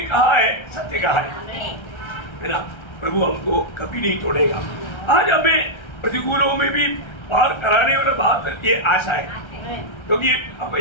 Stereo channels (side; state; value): right; late; 1.3 ms